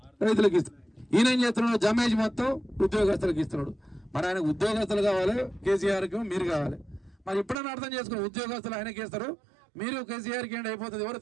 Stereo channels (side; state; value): left; drops out; at 7.6 s